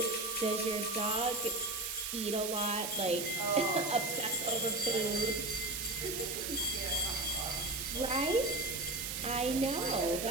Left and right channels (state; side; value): noise; right; hiss, 3 dB below the sound